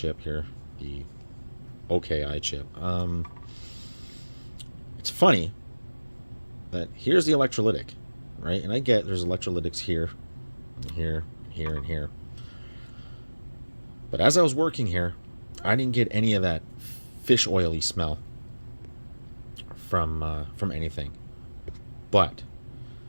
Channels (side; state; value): both; inverted; correlation -1.00